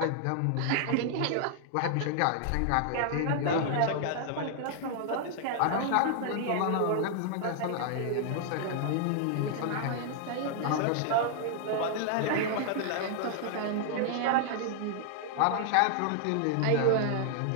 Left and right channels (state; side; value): different; both; correlation 0.00